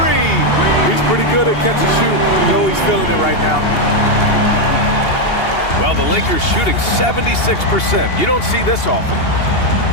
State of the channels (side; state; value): right; late; 2.8 ms